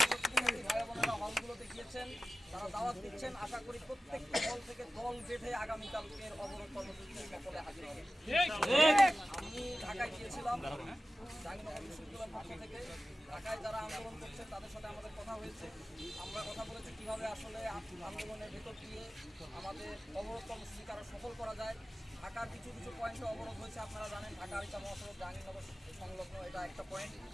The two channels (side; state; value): both; normal; correlation 0.95